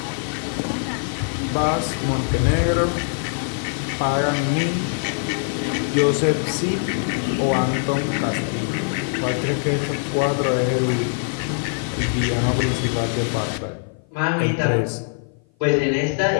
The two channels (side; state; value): right; silent; 56 dB below the other